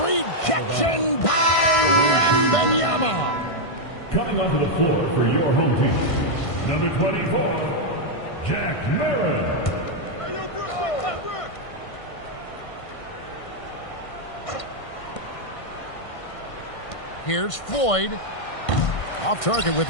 rejection by Wembanyama. Coming onto the floor for your home team, number 24, Jack Marin. Hey, yo, Brook, what's up, Brook? Here's Floyd. Off target with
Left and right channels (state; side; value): late; right; 1.5 ms